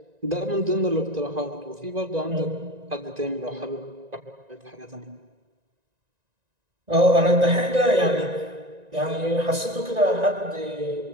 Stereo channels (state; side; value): late; left; 1.9 ms